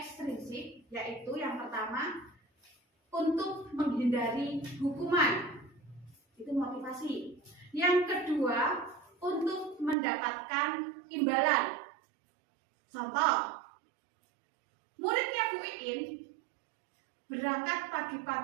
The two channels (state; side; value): drops out; left; at 10.0 s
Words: yaitu yang pertama untuk menghindari hukuman, itu motivasi. Yang kedua untuk mendapatkan imbalan. Contoh, muridnya Bu Iin berangkat